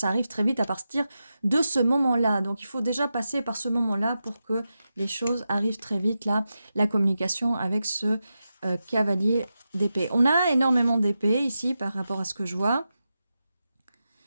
arrive très vite à partir de ce moment-là. Donc, il faut déjà passer par ce moment-là pour que les choses arrivent très vite, là, la communication avec ce cavalier d'épée. On a énormément d'épées ici par rapport à ce que je vois.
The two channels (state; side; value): inverted; both; correlation -0.90